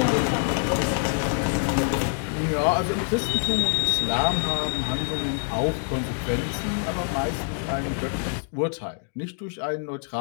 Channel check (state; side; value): silent; right; digital silence